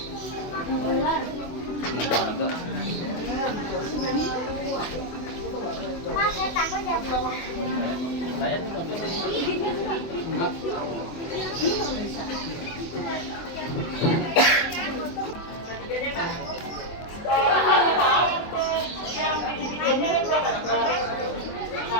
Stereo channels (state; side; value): late; right; 24 ms